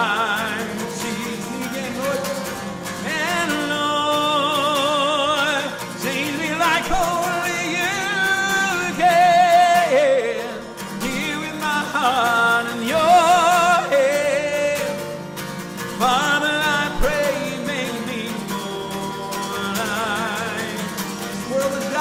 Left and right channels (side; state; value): both; identical; correlation 1.00